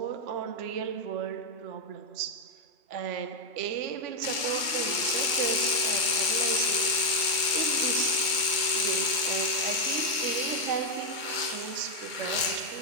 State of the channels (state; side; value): late; left; 2.3 ms